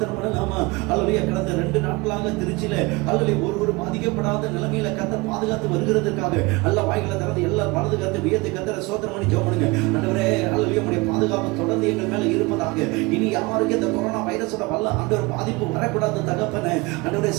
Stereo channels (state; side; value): quieter; left; 24.5 dB